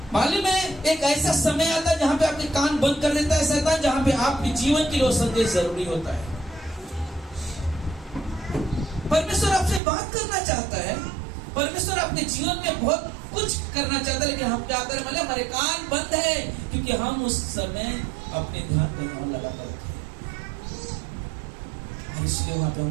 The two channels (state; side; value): drops out; left; at 9.8 s